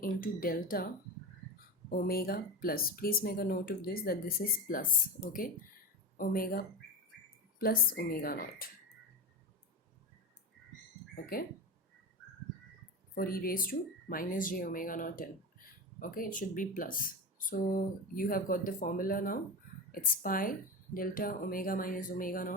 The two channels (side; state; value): both; normal; correlation 0.23